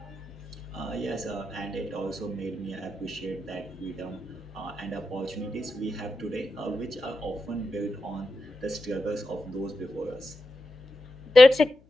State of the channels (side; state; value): left; noise; hum, 29 dB below the sound